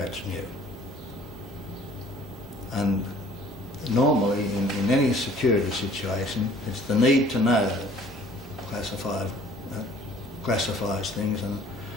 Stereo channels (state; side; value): normal; both; correlation 0.53